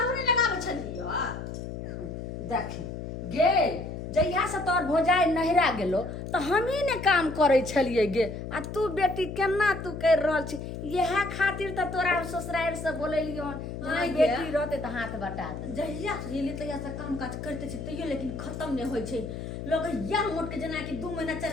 नहीं लगाबै छलियै? देखी गे जहिया से तोर भोजाई नहिरा गेलो तो हमी ने काम करे छलिए गे आ तू बेटी केना तू कर रहल छी यह खातिर तो तोरा ससुराल से बोलेलियो आइ गे। बेटी रहते तो हाथ बटा दे। जहिया से गेली तहिया से काम काज करते छी तैयो लेकिन खत्म नहीं होइ छै। लोग या मोट के जेना कि 2 महीना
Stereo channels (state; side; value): noise; left; hum, 7 dB below the sound